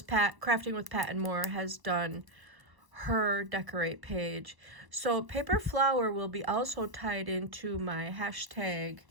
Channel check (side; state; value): left; late; 1.0 ms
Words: Pat, Crafting with Pat and More, has done her decorate page. So paper flower will be also tied into my hashtag.